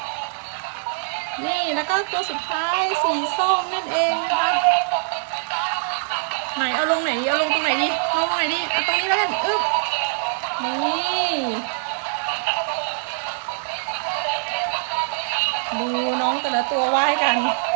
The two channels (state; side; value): silent; left; 62 dB below the other